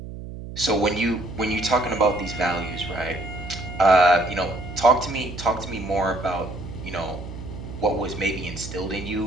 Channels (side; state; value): right; noise; hum, 10 dB below the sound